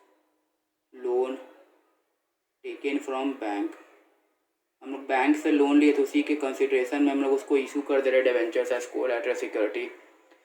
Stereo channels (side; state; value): both; identical; correlation 1.00